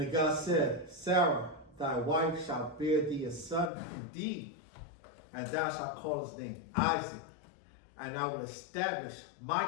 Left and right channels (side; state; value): right; drops out; at 3.7 s